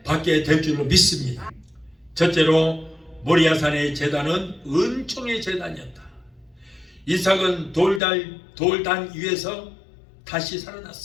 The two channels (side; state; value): right; drops out; at 8.0 s